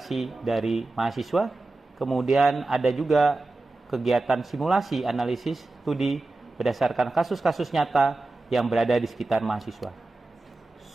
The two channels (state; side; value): quieter; left; 3.1 dB